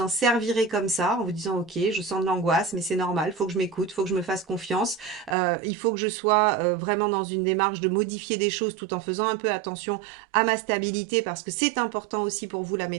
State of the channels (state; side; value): drops out; left; at 5.4 s